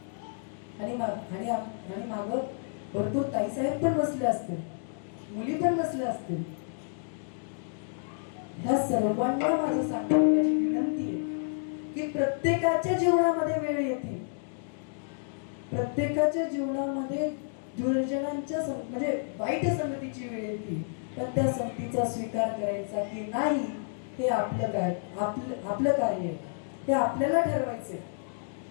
आणि मागं भरपूर ताईसाहेब पण बसले असतील, मुली पण बसल्या असतील. ह्या सर्वांना माझं सांगण्याची विनंती आहे की प्रत्येकाच्या जीवनामध्ये वेळ येते, प्रत्येकाच्या जीवनामध्ये दुर्जनांच्या म्हणजे वाईट संगतीची वेळ येते. पण त्या संगतीचा स्वीकार करायचा की नाही हे आपलं कार्य आहे, हे आपल्याला ठरवायचे.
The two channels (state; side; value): silent; right; digital silence